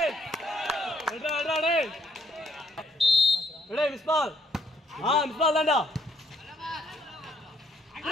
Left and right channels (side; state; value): both; normal; correlation 0.69